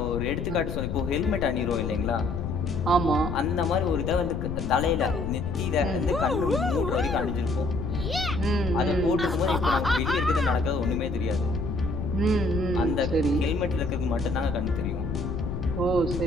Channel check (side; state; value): left; noise; rumble, 4 dB below the sound